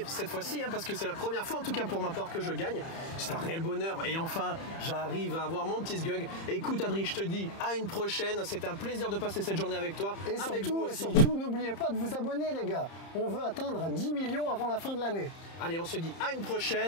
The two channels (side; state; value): right; late; 30 ms